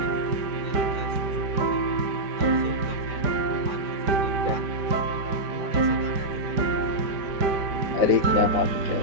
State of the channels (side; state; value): left; late; 5.0 ms